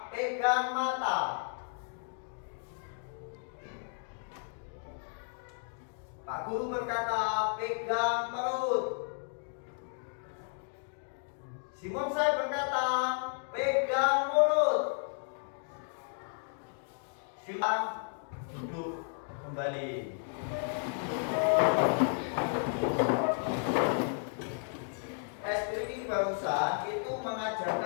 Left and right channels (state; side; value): silent; right; 55 dB below the other